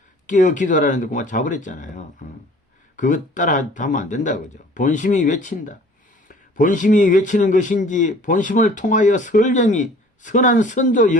깨어 기도하라는데 그만 잡으랬잖아요. 그것 따라 하면 안 된다 그죠. 본심이 외친다. 본심이 외치는 것인지, 본심을 통하여 설령이 선한 선조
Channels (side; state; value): both; normal; correlation 0.50